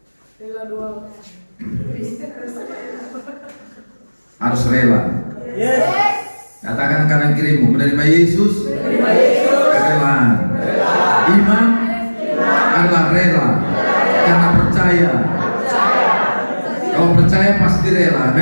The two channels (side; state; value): both; inverted; correlation -1.00